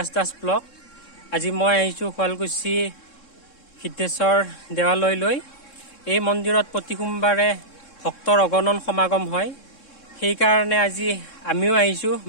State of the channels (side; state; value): right; late; 3.7 ms